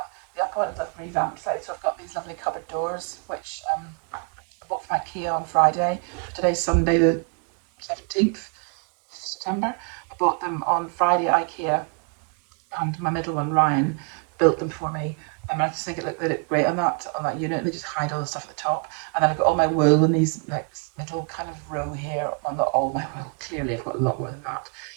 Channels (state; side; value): quieter; left; 37.3 dB